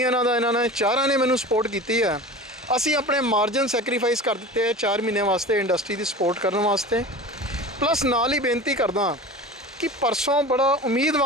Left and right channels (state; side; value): normal; both; correlation 0.34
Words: ਦਾ, ਇਹਨਾਂ ਨੇ ਚਾਰਾਂ ਨੇ ਮੈਨੂੰ ਸਪੋਰਟ ਕੀਤੀ ਹੈ। ਅਸੀਂ ਆਪਣੇ ਮਾਰਜਨ ਸੈਕਰੀਫਾਈਸ ਕਰ ਦਿੱਤੇ ਹੈ 4 ਮਹੀਨੇ ਵਾਸਤੇ ਇੰਡਸਟਰੀ ਦੀ ਸਪੋਰਟ ਕਰਨ ਵਾਸਤੇ। ਪਲੱਸ ਨਾਲ ਹੀ ਬੇਨਤੀ ਕਰਦਾ ਕਿ ਪਰਸੋਂ ਬੜਾ